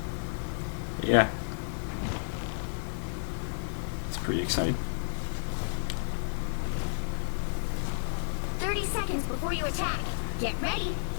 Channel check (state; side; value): silent; right; 57 dB below the other